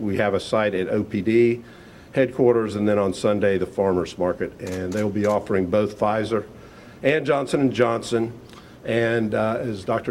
have a site at OPD headquarters, and then on Sunday, the Farmers Market. And they will be offering both Pfizer and Johnson & Johnson. And as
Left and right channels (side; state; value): both; identical; correlation 1.00